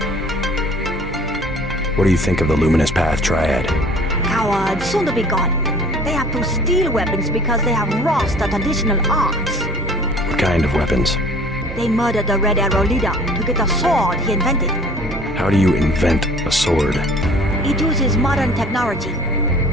What do you think of the Luminous Path Triad? Cowards, soon to be gone. They have to steal weapons because they have lost the traditional arts. What kind of weapons? They murdered the Red Arrow leader to get the sword he invented. How do you invent a sword? It uses modern technology.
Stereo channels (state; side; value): normal; both; correlation 0.50